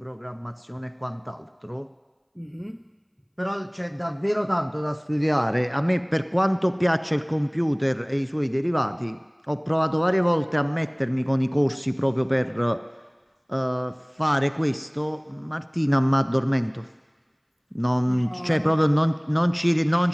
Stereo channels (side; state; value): both; identical; correlation 1.00